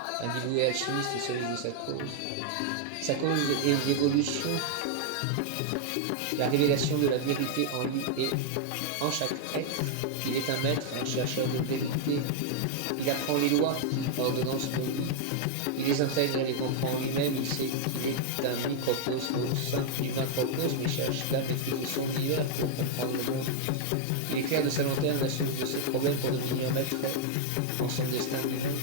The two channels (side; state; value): both; different; correlation 0.00